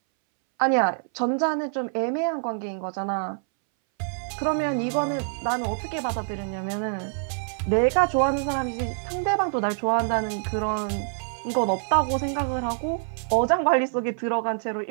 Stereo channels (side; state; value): left; silent; 61 dB below the other